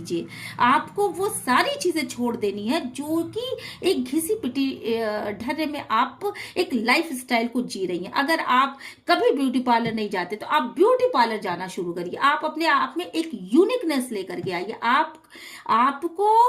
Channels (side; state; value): both; identical; correlation 1.00